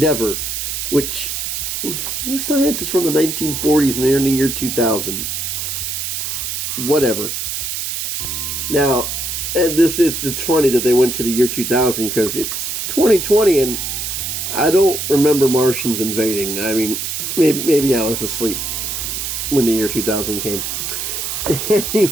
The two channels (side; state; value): right; noise; hiss, 3 dB below the sound